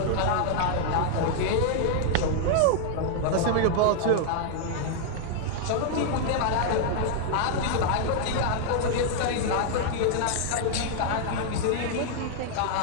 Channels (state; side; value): different; both; correlation 0.00